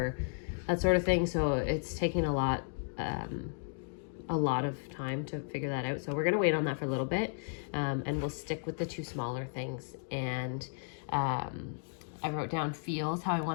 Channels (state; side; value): silent; right; digital silence